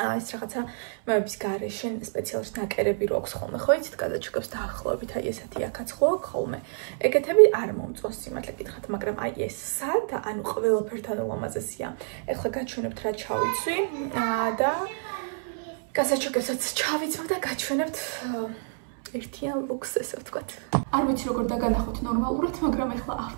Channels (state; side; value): silent; left; 59 dB below the other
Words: რაღაცა მეების გარეშე სპეციალურად ნაკერები რო აქვს ხოლმე, ხო იცით, კაზეჩოკებს დაახლოებით აი ესეთი აქაც ხო აქვს ხოლმე. ეგეთები არ მომწონს სიმართლე გითხრათ, მაგრამ აი ეს სადა, ანუ ყველაფერთან ულამაზესია. ეხლა გაჩვენებთ რა ჩავიცვი და გასაჩუქებსაც ჩავიცავ და გაჩვენებთ ერთიან ლუქს, ესე ვთქვათ. არ ვიცი როგორ დაგანახოთ ნორმალურად, მაგრამ ახლა